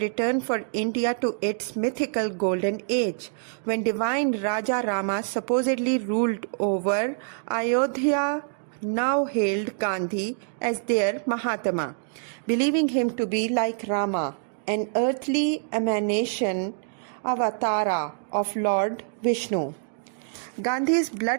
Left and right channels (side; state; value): left; silent; digital silence